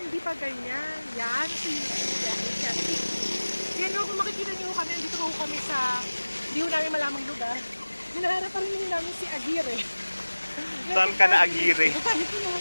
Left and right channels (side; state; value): both; inverted; correlation -1.00